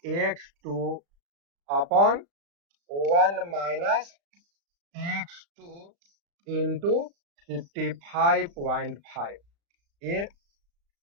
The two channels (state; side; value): late; left; 35 ms